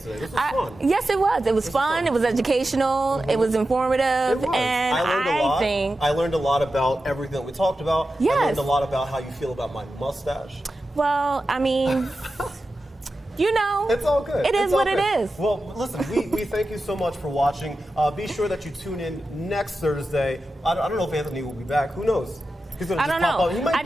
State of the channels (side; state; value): both; normal; correlation 0.92